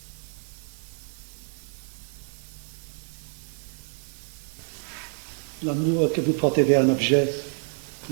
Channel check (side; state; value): left; silent; 59 dB below the other